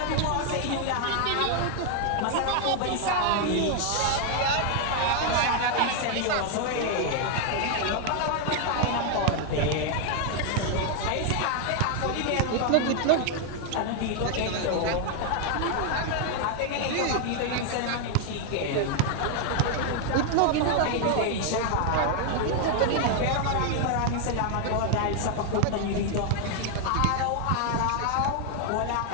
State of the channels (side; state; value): both; different; correlation 0.00